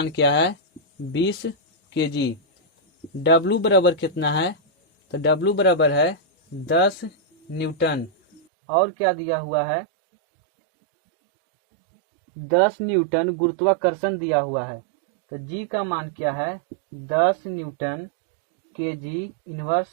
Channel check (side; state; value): left; drops out; at 8.4 s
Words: क्या है 20 केजी। W बराबर कितना है, तो W बराबर है 10 न्यूटन और क्या दिया हुआ है 10 न्यूटन गुरुत्वाकर्षण दिया हुआ है। तो G का मान क्या है 10 न्यूटन केजी